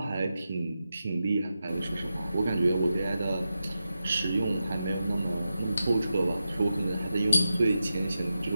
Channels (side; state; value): both; inverted; correlation -0.90